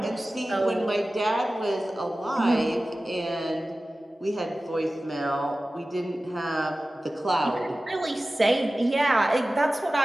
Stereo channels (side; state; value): both; normal; correlation 0.96